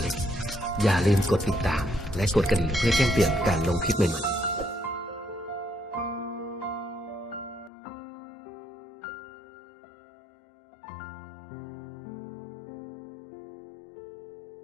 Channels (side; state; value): right; drops out; at 7.7 s